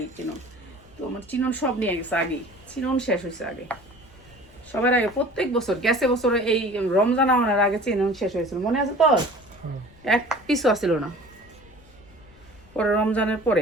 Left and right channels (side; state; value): left; noise; rumble, 26 dB below the sound